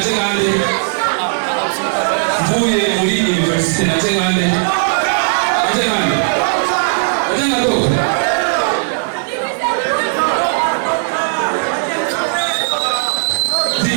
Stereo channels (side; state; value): left; silent; digital silence